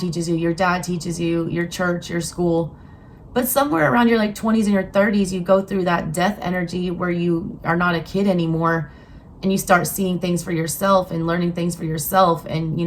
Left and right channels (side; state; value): both; identical; correlation 1.00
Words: you, your dad teaches you, your church, your school. But somewhere around your 20s and your 30s, you go through that death energy where you are not a kid anymore, and you start seeing things for yourself and learning things for yourself, and